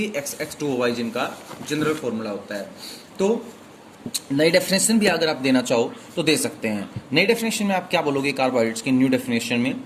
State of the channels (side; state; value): both; identical; correlation 1.00